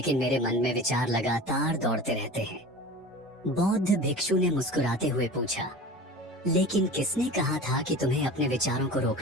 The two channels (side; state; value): both; normal; correlation 0.36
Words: मेरे मन में विचार लगातार दौड़ते रहते हैं। बौद्ध भिक्षु ने मुस्कुराते हुए पूछा, लेकिन किसने कहा था कि तुम्हें अपने विचारों को